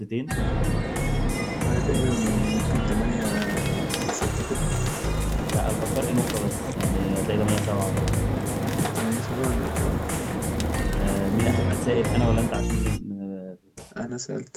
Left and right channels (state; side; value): identical; both; correlation 1.00